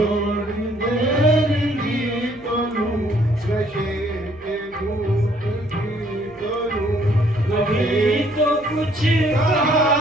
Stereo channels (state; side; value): noise; right; hum, 26 dB below the sound